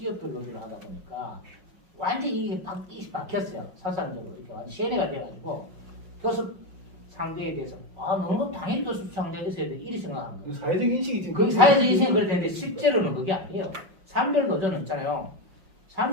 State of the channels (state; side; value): late; left; 5.5 ms